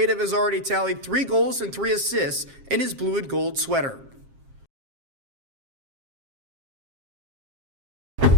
has already tallied 3 goals and 3 assists in his blue and gold sweater.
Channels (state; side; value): late; left; 7.4 ms